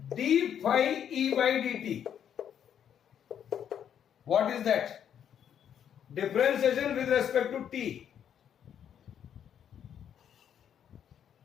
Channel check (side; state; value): right; quieter; 9.1 dB